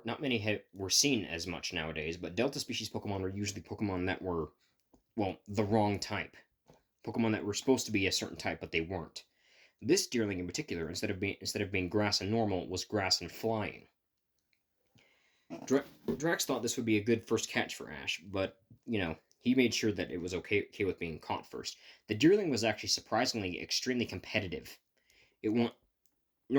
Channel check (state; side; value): identical; both; correlation 1.00